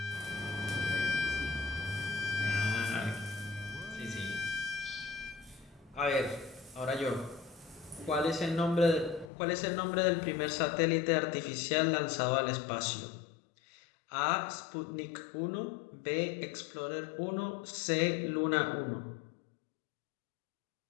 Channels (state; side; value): drops out; right; at 9.3 s